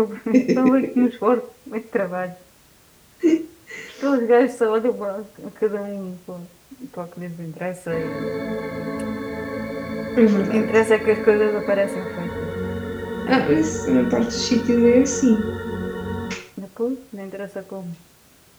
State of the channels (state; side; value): identical; both; correlation 1.00